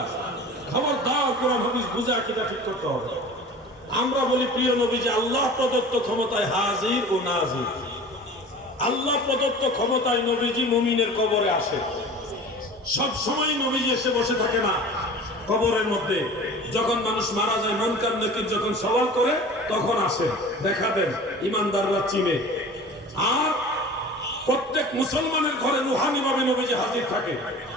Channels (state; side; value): normal; both; correlation 0.40